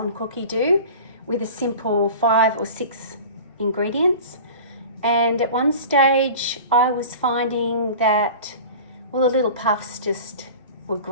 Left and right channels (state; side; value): inverted; both; correlation -0.38